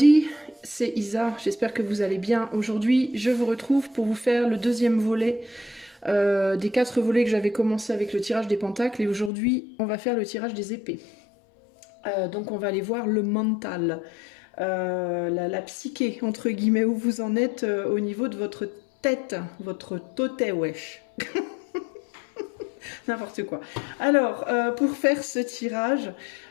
c'est Isa, j'espère que vous allez bien. Aujourd'hui, je vous retrouve pour vous faire le deuxième volet des 4 volets que j'avais commencé avec le tirage des pentacles. Et aujourd'hui, on va faire le tirage des épées. Donc on va aller voir le mental, la psyché, entre guillemets, où vous en êtes au niveau de votre tête, votre toté wesh. N'importe quoi. Alors, pour faire ce tirage,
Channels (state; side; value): drops out; right; at 9.3 s